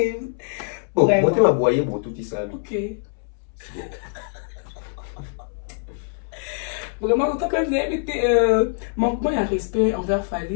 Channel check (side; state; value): right; silent; 63 dB below the other